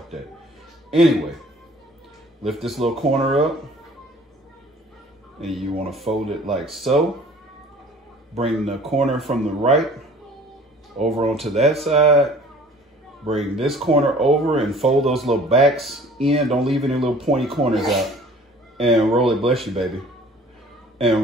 that. Anyway, lift this little corner up and you want to fold it like so. Bring the corner from the right over onto that side. Bring this corner over and fold those little backs in. Don't leave any little pointy corners out. And roll it, bless you, baby.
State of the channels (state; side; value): normal; both; correlation 0.50